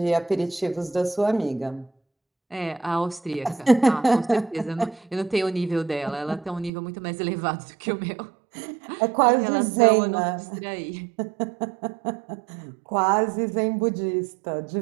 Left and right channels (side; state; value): left; drops out; at 6.7 s